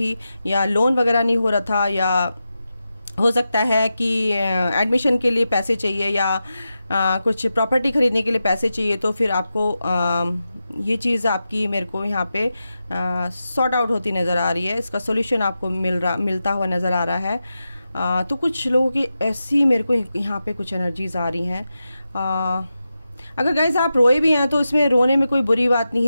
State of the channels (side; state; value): both; inverted; correlation -0.91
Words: या लोन वगैरह नहीं हो रहा था, या हो सकता है कि एडमिशन के लिए पैसे चाहिए या कुछ प्रॉपर्टी ख़रीदने के लिए पैसे चाहिए, तो फिर आपको ये चीज़ आपकी मेरे को यहाँ पे सॉर्ट आउट होती नज़र आ रही है। इसका सॉल्यूशन आपको मिलता हुआ नज़र आ रहा है। तो कुछ लोगों की ऐसी मेरे को यहाँ पे कुछ एनर्जीज़ आ रही हैं। अगर गाइस आप रोए भी हैं तो इसमें रोने में कोई बुरी बात नहीं